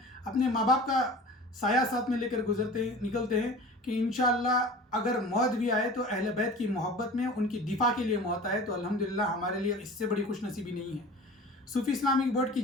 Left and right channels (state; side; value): normal; both; correlation 0.39